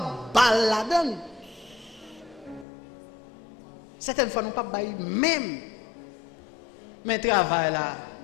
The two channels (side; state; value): right; drops out; at 2.7 s